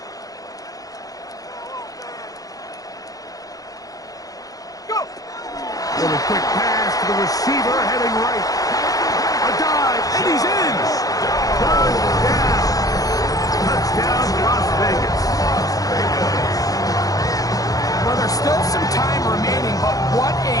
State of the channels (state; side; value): late; right; 0.17 ms